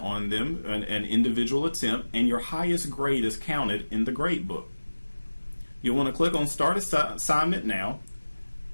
them, an individual attempt, and your highest grade is counted in the grade book. You'll want to click on Start Assignment Now,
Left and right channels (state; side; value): inverted; both; correlation -1.00